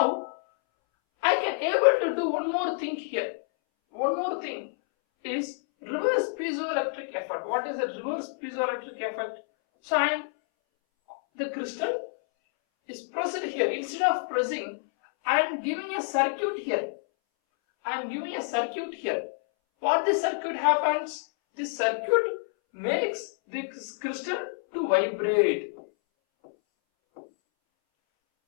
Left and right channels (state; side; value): silent; right; 59 dB below the other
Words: I can able to do one more thing here. One more thing is reverse piezoelectric effect. What is the reverse piezoelectric effect? So the crystal is pressed here. Instead of pressing, I am giving a circuit here. I am giving a circuit here. What this circuit happens? This circuit makes this crystal to vibrate.